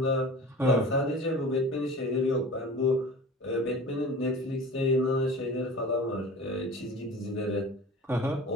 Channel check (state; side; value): normal; both; correlation 0.38